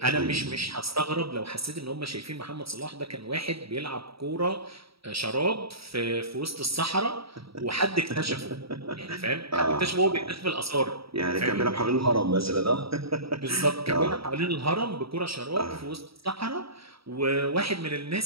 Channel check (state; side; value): late; left; 0.76 ms